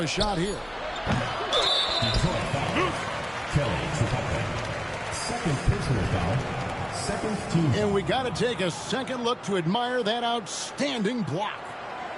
shot here. Kelly Trapuka. Second personal foul. Second team. And we got to take a second look to admire that outstanding block.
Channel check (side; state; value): both; identical; correlation 1.00